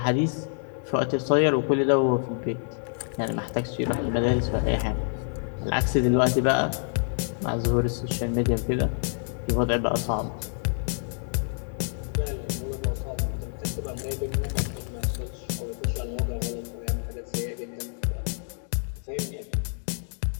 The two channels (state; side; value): silent; right; digital silence